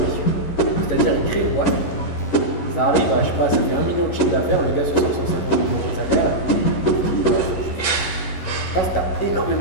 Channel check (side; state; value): right; late; 11 ms